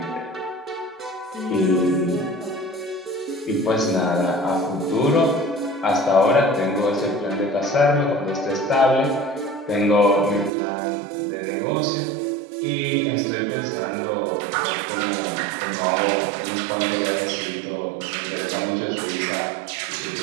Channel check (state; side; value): drops out; left; at 10.5 s